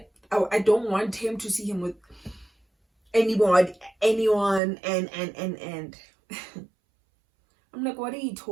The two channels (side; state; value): left; drops out; at 4.6 s